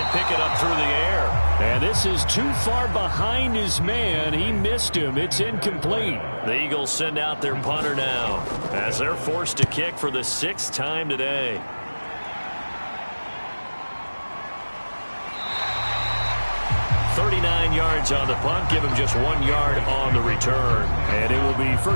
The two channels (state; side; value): inverted; both; correlation -1.00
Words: pick it up through the air. And this is too far behind his man. He missed him. It's incomplete. The Eagles send out their punter now as they're forced to kick for the 6th time today. "39 yards on the punt. Give him just 1 yard on the return. And it will be